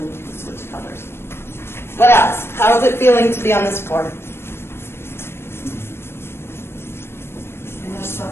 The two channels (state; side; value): late; right; 0.12 ms